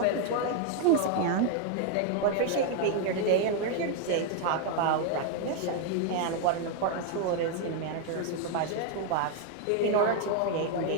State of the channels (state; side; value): different; both; correlation 0.00